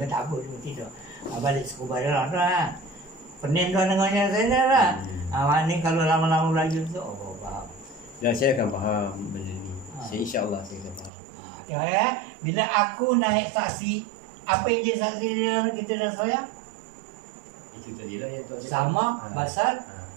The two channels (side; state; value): left; drops out; at 11.1 s